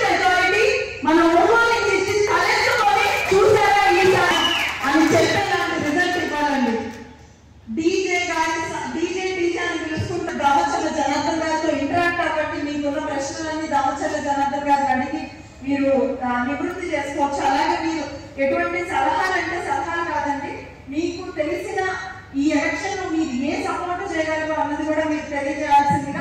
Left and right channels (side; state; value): both; identical; correlation 1.00